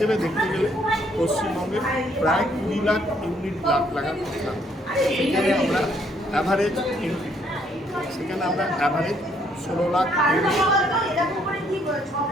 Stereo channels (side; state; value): both; normal; correlation 0.68